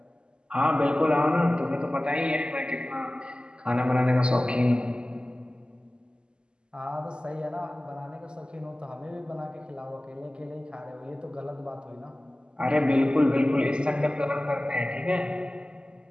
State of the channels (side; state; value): left; late; 0.049 ms